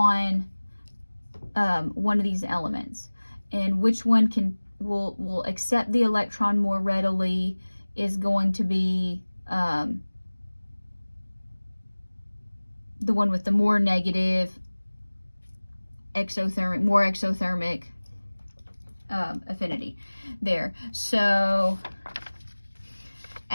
one of these elements. And which one will accept the electron more readily is going to be the one with the more negative exothermic affinity there. So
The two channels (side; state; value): both; inverted; correlation -1.00